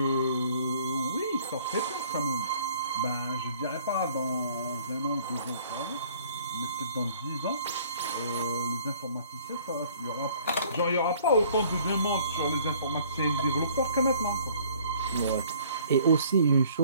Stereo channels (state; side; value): inverted; both; correlation -0.56